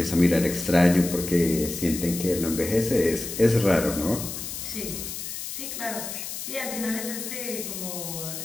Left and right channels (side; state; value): left; noise; hiss, 7 dB below the sound